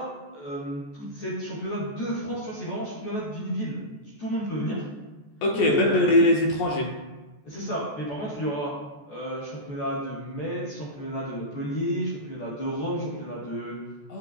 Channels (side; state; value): right; late; 14 ms